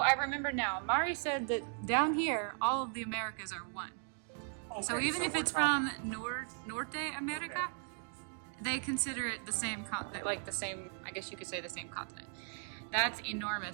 remember now. Mari said that down here, all of the Americas are one. Okay, so even if it's from Norte America, they consider it the same, like the same, I guess you could say the same continent. That's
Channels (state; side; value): silent; left; 53 dB below the other